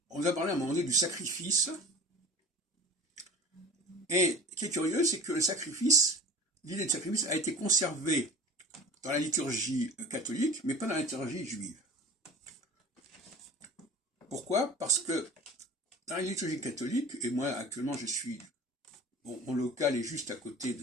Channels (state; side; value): normal; both; correlation 0.40